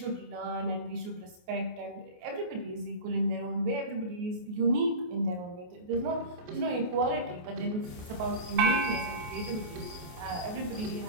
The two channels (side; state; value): left; late; 28 ms